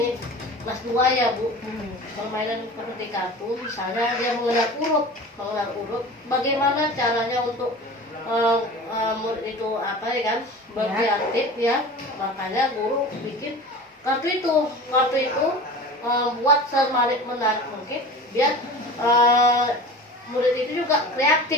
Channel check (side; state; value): both; normal; correlation 0.36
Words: kelas 2 ya Bu. Permainan seperti kartu. Misalnya dia mengenal huruf. Bagaimana caranya untuk murid itu apa ya kan berkreatif ya, makanya guru bikin kartu itu buat semenarik mungkin biar murid itu juga